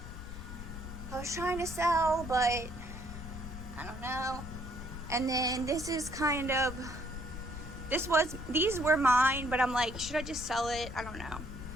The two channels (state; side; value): noise; left; rumble, 10 dB below the sound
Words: I was trying to sell, but I don't know. And then this is kind of, these were mine, but I'm like, should I just sell it? I don't know.